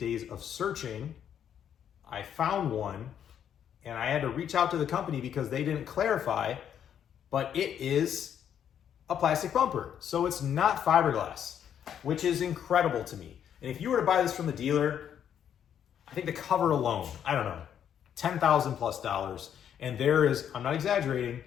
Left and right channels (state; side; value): quieter; right; 9.2 dB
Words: of searching, I found one, and I had to reach out to the company because they didn't clarify, but it is a plastic bumper. So it's not fiberglass, which is incredible to me. And if you were to buy this from the dealer, I think the cover alone, I don't know, $10,000 plus. And there is, I'm not exaggerating,